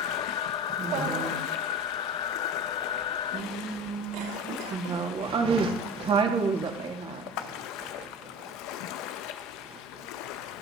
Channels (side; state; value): both; normal; correlation 0.34